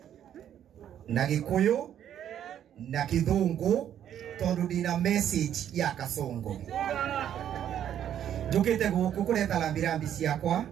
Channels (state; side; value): quieter; left; 10.2 dB